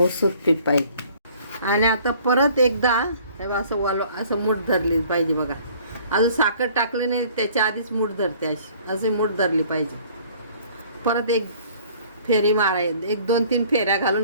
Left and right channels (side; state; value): both; inverted; correlation -0.55